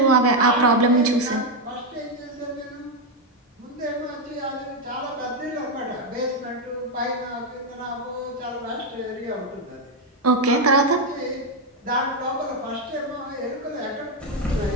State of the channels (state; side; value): normal; both; correlation 0.04